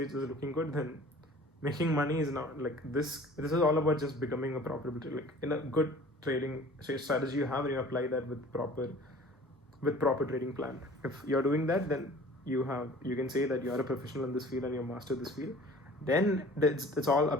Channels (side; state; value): both; normal; correlation 0.47